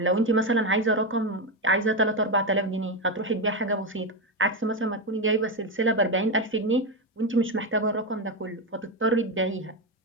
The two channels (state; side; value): normal; both; correlation 0.10